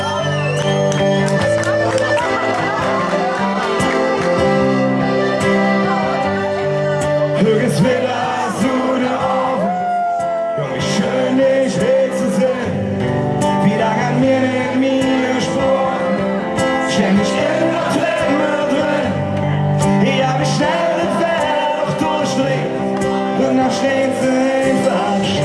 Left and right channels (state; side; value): identical; both; correlation 1.00